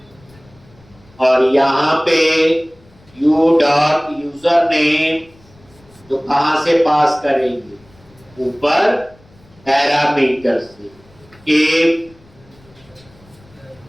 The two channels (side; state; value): left; noise; rumble, 28 dB below the sound